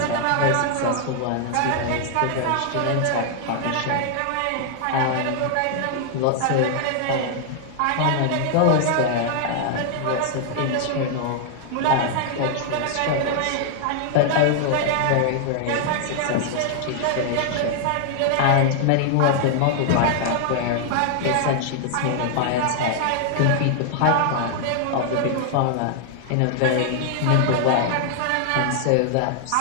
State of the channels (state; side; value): different; both; correlation 0.00